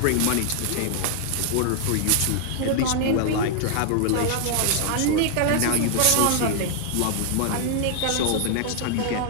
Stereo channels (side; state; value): both; different; correlation 0.00